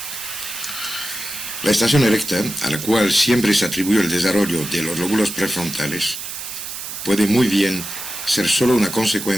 La estación erecta, a la cual siempre se atribuye el desarrollo de los lóbulos prefrontales, puede muy bien ser solo una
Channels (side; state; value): right; noise; hiss, 8 dB below the sound